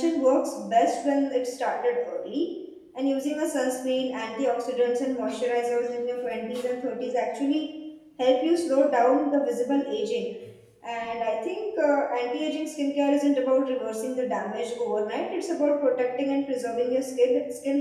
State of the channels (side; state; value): both; identical; correlation 1.00